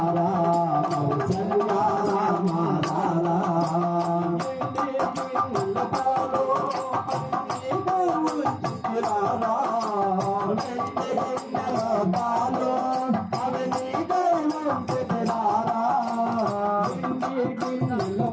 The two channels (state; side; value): identical; both; correlation 1.00